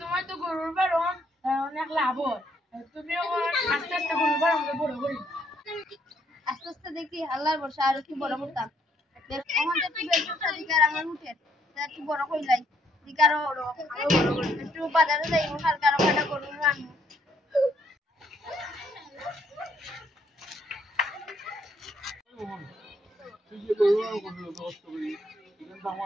তোমার তো গরুর বারণ অনেক লাভ হয়, তুমি আস্তে আস্তে গরুর বারণ বড় করি। আস্তে আস্তে দেখি আল্লাহর বর্ষা আর কি বড় করতাম। আমাদের একটু ব্যবসা দিকার আমার উঠে একটু বড় কইলাই দিকারও আরো বড় করি, একটু বাজারে যাই হালকা আরো কাটা করবো আনবো। তুই যে গরু আর কত কষ্ট করি, এখানে তো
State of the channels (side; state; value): both; normal; correlation 0.70